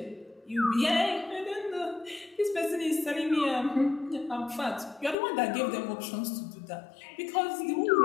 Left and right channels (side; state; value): right; drops out; at 5.2 s